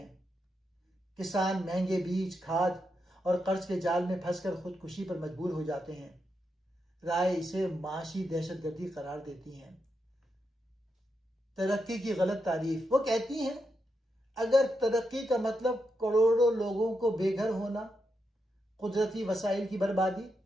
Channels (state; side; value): normal; both; correlation 0.84